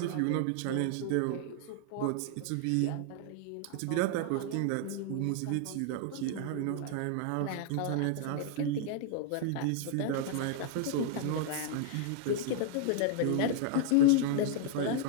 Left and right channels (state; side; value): different; both; correlation 0.00